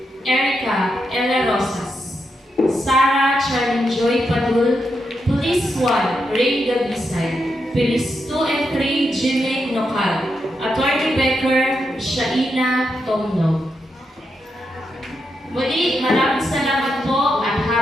Erica Ella Rosas. Sarah Charlene Joy Padul. Police 1 Ray Gabisay. Police 2 and 3 Jimmy Nokal. Attorney Becker Shaina Tomno. Muli, maraming salamat po at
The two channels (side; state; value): both; normal; correlation 0.84